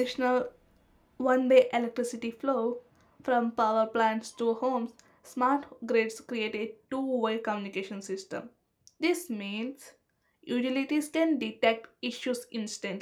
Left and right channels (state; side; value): identical; both; correlation 1.00